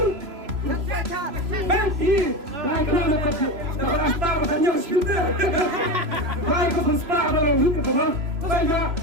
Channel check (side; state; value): left; late; 3.0 ms